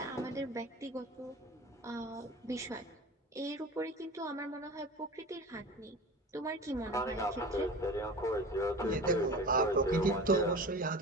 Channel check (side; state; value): both; normal; correlation 0.35